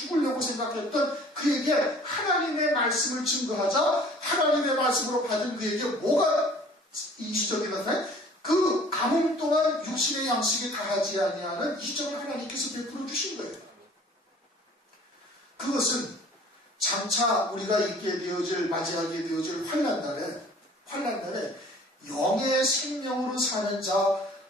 생각했던 그에게 하나님의 말씀을 증거하자 하나님의 말씀으로 받은 그에게 뭐가 이적이 나타나요? 그 가뭄 동안 육신의 양식이 다하지 아니하는 이적을 하나님께서 베풀어 주신 거예요. 그것은 장차 우리가 맞이하게 되어질 환난날에 영의 생명으로 사는 자,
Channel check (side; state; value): both; normal; correlation 0.50